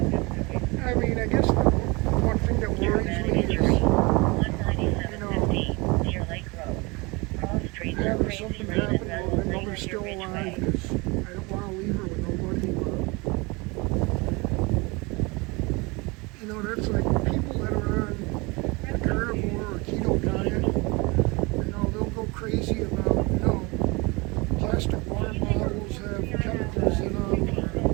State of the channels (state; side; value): quieter; left; 26.2 dB